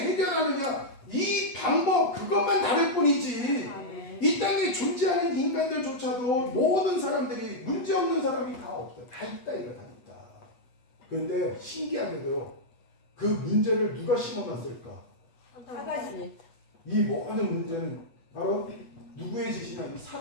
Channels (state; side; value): late; right; 8.2 ms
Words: 해결하느냐, 이 방법 그것만 다를 뿐이지 이 땅에 존재하는 인간들조차도 모든 사람들이 문제 없는 사람이 다 없어요. 다 있다, 이거 다 있다. 그런데 신기하게도요, 그 문제를 누가 심어놨을까? 사단이. 이 모든 문제는 바로 누구의 짓이냐? 이